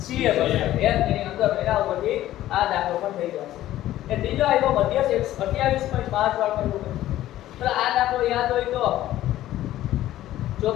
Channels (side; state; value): right; quieter; 14.0 dB